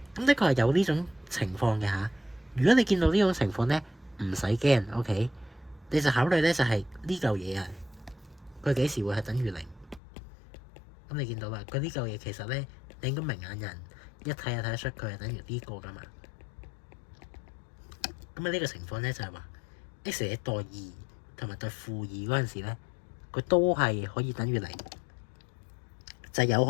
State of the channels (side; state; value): right; drops out; at 10.0 s